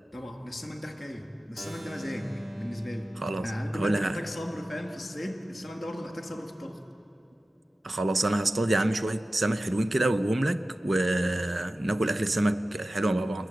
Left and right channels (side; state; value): both; normal; correlation 0.95